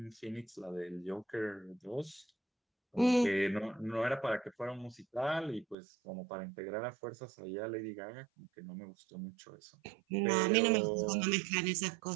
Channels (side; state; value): left; drops out; at 5.8 s